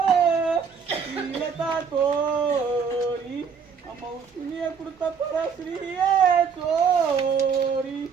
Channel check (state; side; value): quieter; left; 6.3 dB